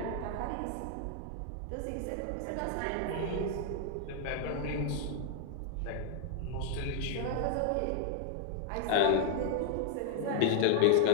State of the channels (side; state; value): both; different; correlation -0.01